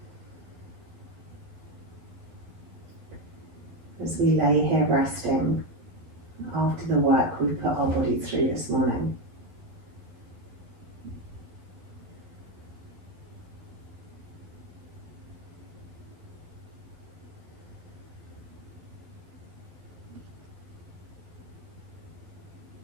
As we lay here resting after the work we've put our body through this morning.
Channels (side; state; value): left; late; 12 ms